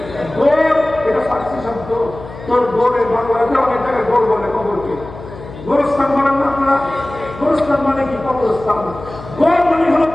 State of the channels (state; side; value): noise; left; hum, 14 dB below the sound